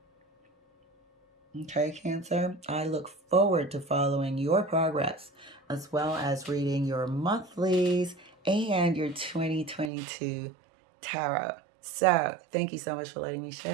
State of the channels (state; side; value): drops out; left; at 9.9 s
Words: Okay, Cancer? I look forward to following your progress, as well as reading your monthlies and your 2022 tarot. So, thank you so much for letting me